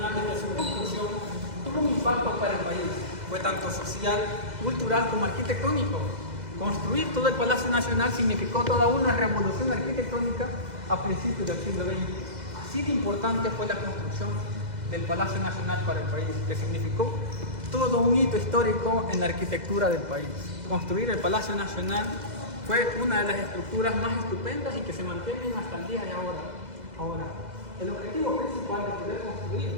desde su construcción tuvo un impacto para el país. Fue tanto social, cultural como arquitectónico. Construir todo el Palacio Nacional significó toda una revolución arquitectónica a principios del siglo XX. Así de importante fue la construcción del Palacio Nacional para el país, que significó todo un hito histórico en la arquitectura del país. Construir el Palacio Nacional fue una de las estructuras más estupendas y que se mantienen hasta el día de ahora. Ahora, el objetivo principal de poder construir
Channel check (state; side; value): late; left; 2.0 ms